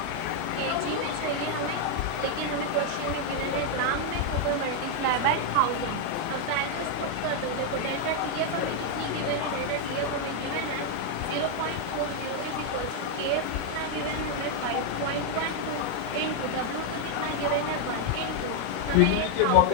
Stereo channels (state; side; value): different; both; correlation 0.00